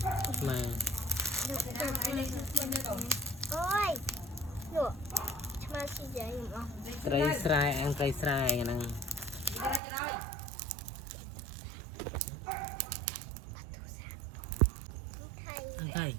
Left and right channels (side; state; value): left; drops out; at 9.8 s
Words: mà ôi được mà xin dạy không cây sài ăn cây sài nè ăn thầy